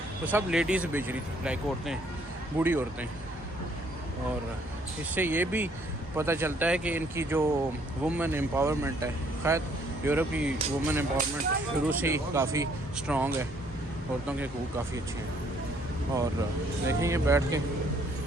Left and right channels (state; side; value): normal; both; correlation 0.65